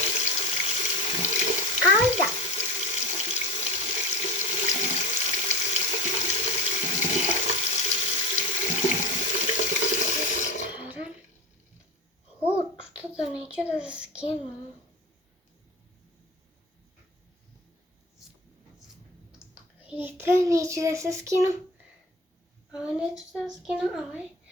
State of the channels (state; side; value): normal; both; correlation 0.32